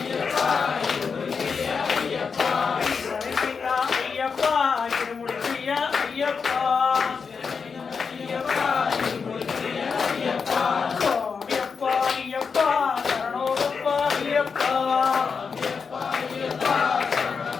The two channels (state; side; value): quieter; right; 5.6 dB